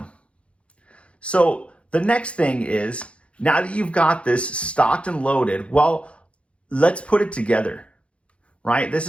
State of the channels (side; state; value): right; late; 0.060 ms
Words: So the next thing is, now that you've got this stocked and loaded, well, let's put it together, right? This